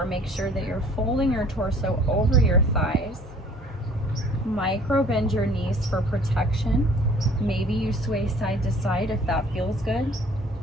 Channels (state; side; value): normal; both; correlation 0.53